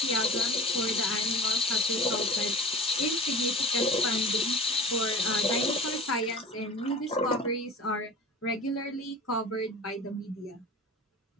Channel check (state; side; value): normal; both; correlation 0.36